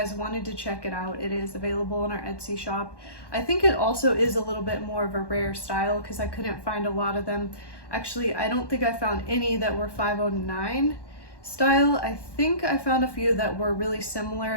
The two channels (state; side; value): late; right; 1.1 ms